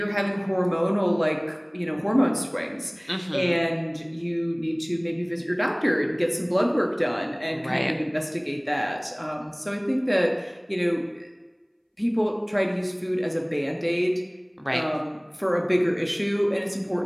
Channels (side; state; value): both; identical; correlation 1.00